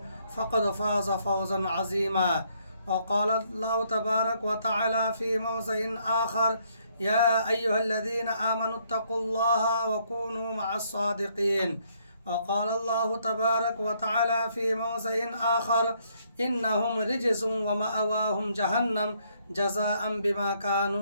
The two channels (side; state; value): both; inverted; correlation -0.70